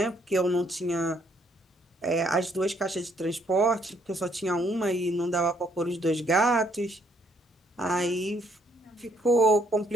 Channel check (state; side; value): normal; both; correlation 0.69